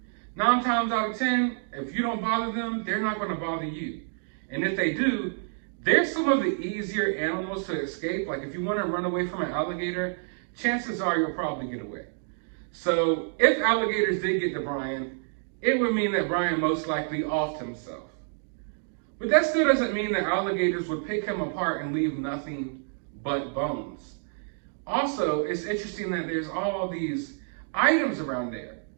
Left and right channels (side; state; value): left; silent; digital silence